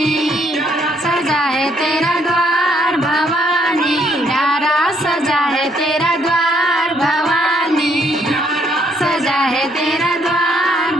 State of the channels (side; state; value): both; normal; correlation 0.69